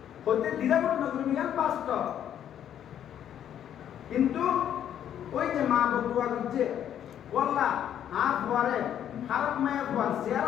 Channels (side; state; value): right; quieter; 10.0 dB